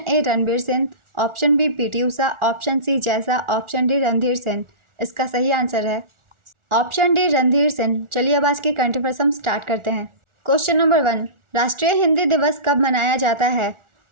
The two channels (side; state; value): left; late; 1.4 ms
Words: A Ranbir Singh, option B PT Usha, option C जैसा, ऑप्शन डी रणधीर सिंह। इसका सही आंसर है ऑप्शन डी रणधीर सिंह। चलिए अब आज के करंट अफेयर्स हम स्टार्ट करते हैं। क्वेश्चन नंबर 1, राष्ट्रीय हिंदी दिवस कब मनाया जाता है।